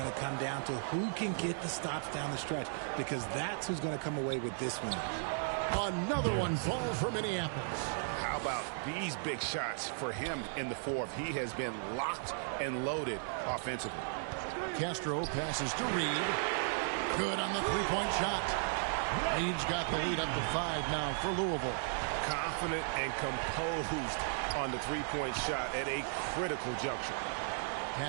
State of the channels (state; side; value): silent; left; 54 dB below the other